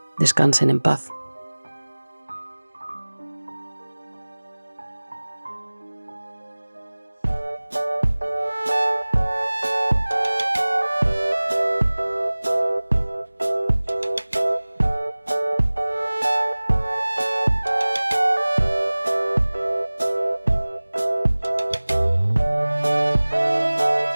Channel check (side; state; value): both; inverted; correlation -1.00